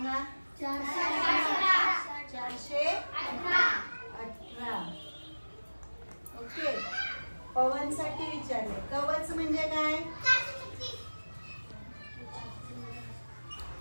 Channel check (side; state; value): both; inverted; correlation -1.00